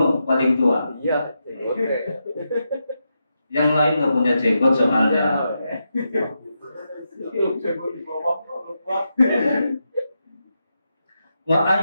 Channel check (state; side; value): inverted; both; correlation -0.86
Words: paling tua. Iya, oke. Yang lain nggak punya jenggot soalnya. Wa